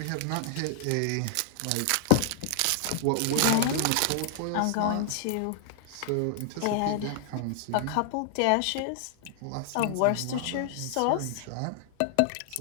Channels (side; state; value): both; different; correlation 0.00